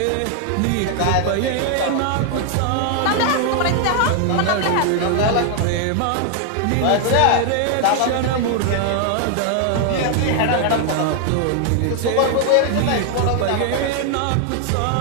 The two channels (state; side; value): different; both; correlation 0.00